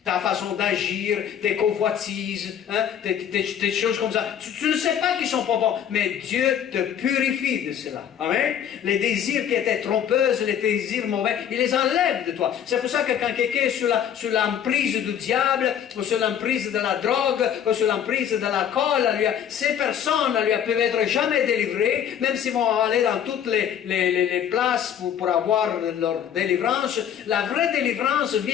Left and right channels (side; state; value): right; quieter; 9.1 dB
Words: ta façon d'agir, tes convoitises, hein, des choses comme ça. Tu ne sais pas qu'ils sont pas bons, mais Dieu te purifie de cela. Amen. Les désirs qui étaient trompeuses, les désirs mauvais, il les enlève de toi. C'est pour ça que quand quelqu'un est sous l'emprise du diable, ou sous l'emprise de la drogue, ou sous l'emprise de l'alcool, ces personnes ne peuvent être jamais délivrées, même s'ils vont aller dans toutes les places pour avoir leur délivrance. La vraie délivrance